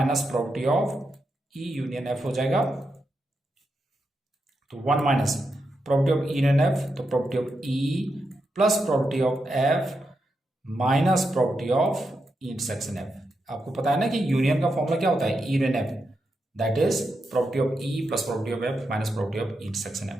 property of E union F हो जाएगा। तो 1 minus property of E union F, तो property of E plus property of F minus property of E intersection F. आपको पता है ना कि यूनियन का फॉर्मूला क्या होता है, E union F, that is property of E plus property of F minus property of E intersection F.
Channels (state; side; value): normal; both; correlation 0.85